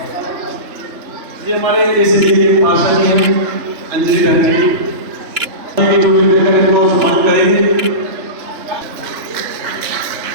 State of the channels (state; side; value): late; left; 3.4 ms